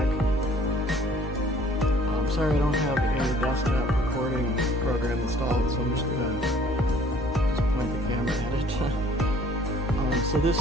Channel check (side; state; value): both; normal; correlation 0.56